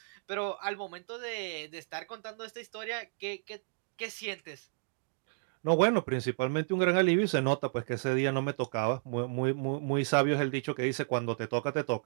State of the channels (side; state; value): left; silent; digital silence